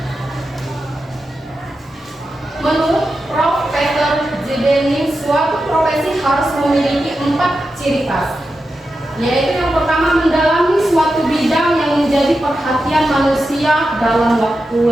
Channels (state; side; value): normal; both; correlation 0.90